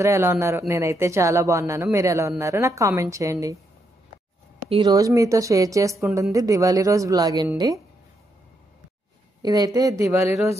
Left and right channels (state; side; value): normal; both; correlation 0.79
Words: ఎలా ఉన్నారు? నేనైతే చాలా బాగున్నాను. మీరు ఎలా ఉన్నారు నాకు కామెంట్ చేయండి. ఈరోజు మీతో షేర్ చేసుకుంటుంది దివాళీ రోజు బ్లాగ్ అండి. ఇదైతే దివాళీ